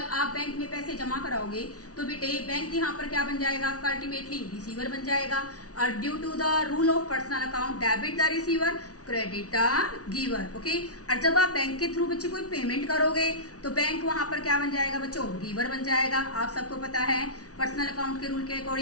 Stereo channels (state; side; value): late; right; 0.67 ms